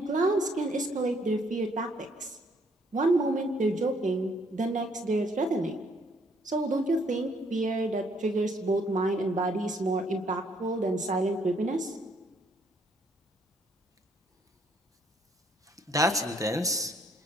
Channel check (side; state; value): both; normal; correlation 0.67